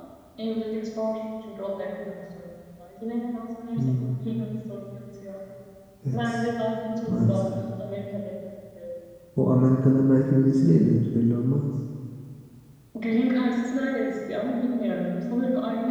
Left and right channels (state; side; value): identical; both; correlation 1.00